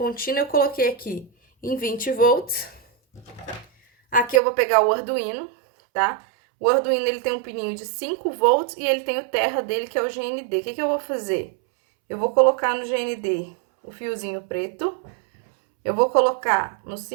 Eu coloquei aqui em 20 volts. Aqui eu vou pegar o Arduino, tá? O Arduino, ele tem um pininho de 5 volts e ele tem o terra dele, que é o GND. O que eu vou fazer? Eu vou colocar no GND o fiozinho preto. Eu vou colocar no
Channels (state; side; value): drops out; left; at 4.4 s